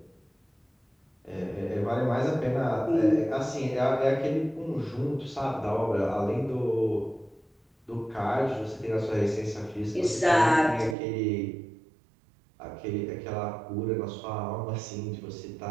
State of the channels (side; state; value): left; drops out; at 11.0 s